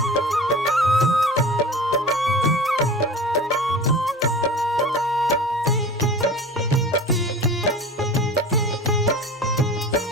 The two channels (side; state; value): both; normal; correlation 0.36